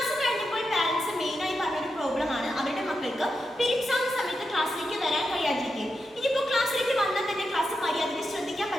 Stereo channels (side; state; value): both; normal; correlation 0.88